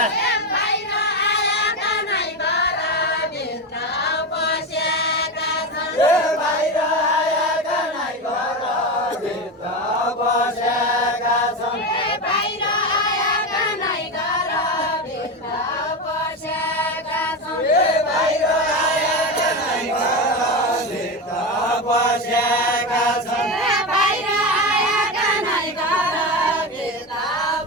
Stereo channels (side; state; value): both; normal; correlation 0.18